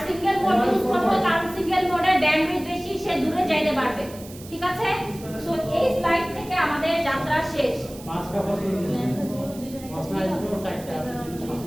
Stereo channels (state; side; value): noise; right; hiss, 18 dB below the sound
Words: সিঙ্গেল মোড ইউজ করব কারণ সিঙ্গেল মোডের ব্যান্ডউইথ বেশি সে দূরে যাইতে পারবে ঠিক আছে সো এই স্লাইড থেকে আমাদের যাত্রা শেষ পাঁচটা প্রশ্ন দিলেন প্রশ্ন আসবে সাইডটা